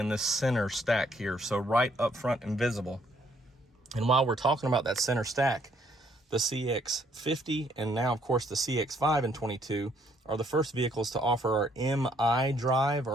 this center stack here. So right up front and visible. And while we're talking about that center stack, the CX-50 and now, of course, the CX-5 in 22 are the first vehicles to offer our MI drive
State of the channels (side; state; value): both; normal; correlation 0.68